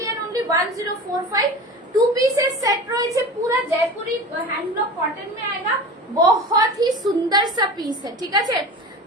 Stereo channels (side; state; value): both; normal; correlation 0.32